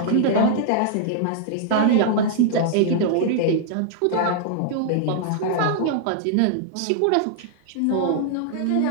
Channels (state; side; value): different; both; correlation -0.01